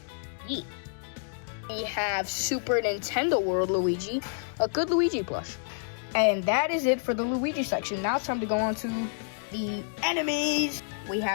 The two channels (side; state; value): right; silent; digital silence